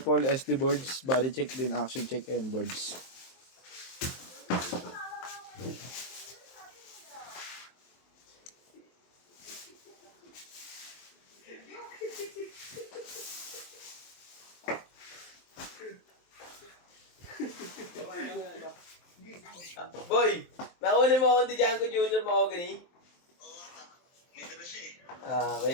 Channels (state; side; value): late; right; 23 ms